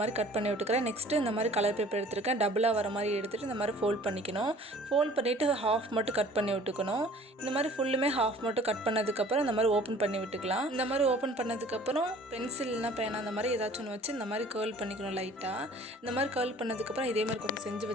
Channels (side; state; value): both; normal; correlation 0.50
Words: மாதிரி கட் பண்ணி விட்டுக்கிறேன். நெக்ஸ்ட்டு இந்த மாதிரி கலர் பேப்பர் எடுத்துருக்கேன். டபுளாக வர மாதிரி எடுத்துகிட்டு இந்த மாதிரி ஃபோல்ட் பண்ணிக்கணும். ஃபோல்ட் பண்ணிவிட்டு ஹாஃப் மட்டும் கட் பண்ணி விட்டுக்கணும். இந்த மாதிரி ஃபுல்லுமே ஹாஃப் மட்டும் கட் பண்ணதுக்கப்புறம் இந்த மாதிரி ஓப்பன் பண்ணி விட்டுக்கலாம். இந்த மாதிரி ஓப்பன் பண்ணதுக்கப்புறம் பென்சில்னா பேனா அந்த மாதிரி ஏதாச்சும் ஒன்று வச்சு இந்த மாதிரி கேர்ள் பண்ணிக்கணும் லைட்டாக. இந்த மாதிரி கேர்ள் பண்ணதுக்கப்புறம் இதே மாதிரி கொஞ்சம் செஞ்சு